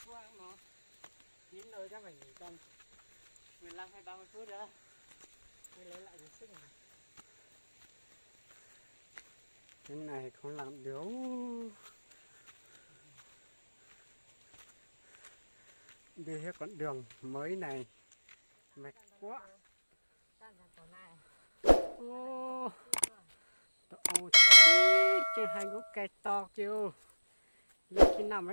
khoang nó chín rồi chắc phải nghỉ tầm 15 hay 30 phút nữa mới lấy lại được sức này. Cái này không làm được. Đi hết con đường mới này mệt quá. Ô, ô chứ hai gốc cây to kêu lúc khi nào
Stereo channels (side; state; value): both; inverted; correlation -1.00